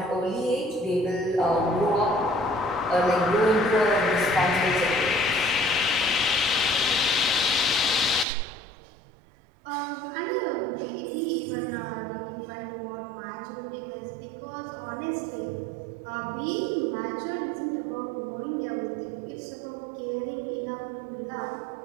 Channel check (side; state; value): left; drops out; at 8.2 s